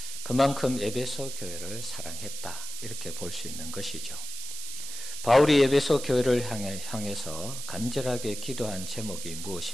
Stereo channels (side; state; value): right; noise; hiss, 8 dB below the sound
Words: 그만큼 에베소 교회를 사랑했다, 이렇게 볼 수 있는 것이죠. 바울이 에베소 교회를 향해서 간절하게 기도한 제목이